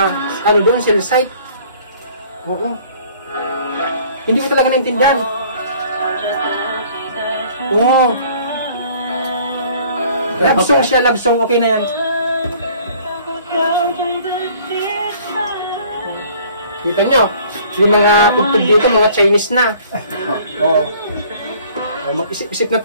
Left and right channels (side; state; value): both; inverted; correlation -0.54